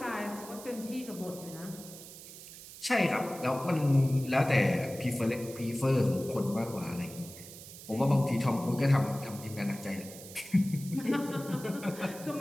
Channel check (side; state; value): right; noise; hiss, 15 dB below the sound